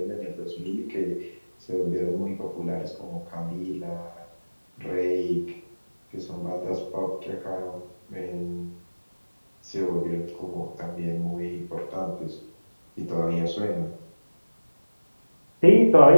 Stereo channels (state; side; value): inverted; both; correlation -1.00